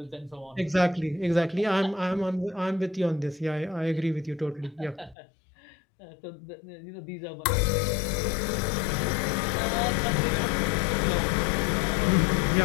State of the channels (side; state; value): right; drops out; at 5.2 s